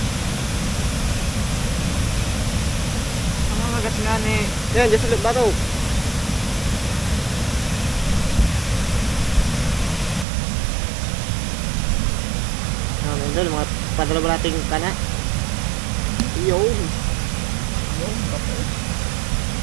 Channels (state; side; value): drops out; left; at 10.2 s